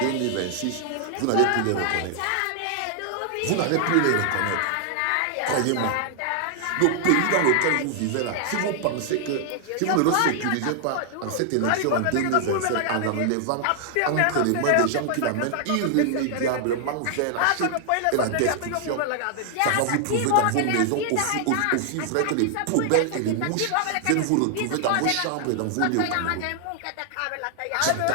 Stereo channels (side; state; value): both; different; correlation 0.00